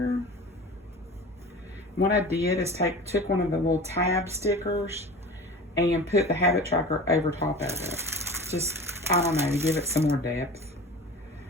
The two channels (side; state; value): both; normal; correlation 0.36